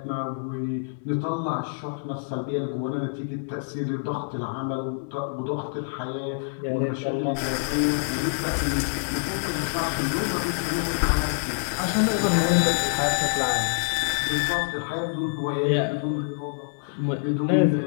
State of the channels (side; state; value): right; silent; digital silence